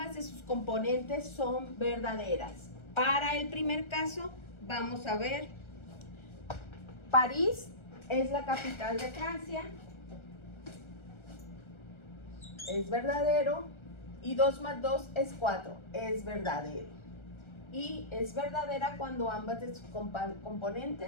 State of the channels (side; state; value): right; late; 1.3 ms